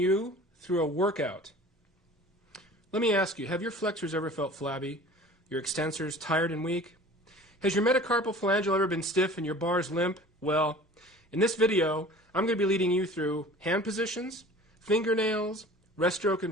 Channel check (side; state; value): both; normal; correlation 0.44